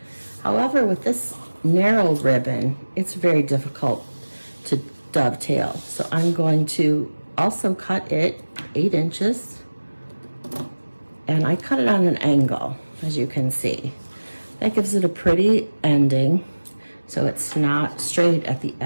However, with this narrow ribbon, it's very difficult to dovetail. So I'm going to also cut it 8 inches. And I cut it on an angle, as you can see. That gives it a pretty ending, so it's not straight at the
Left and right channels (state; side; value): inverted; both; correlation -1.00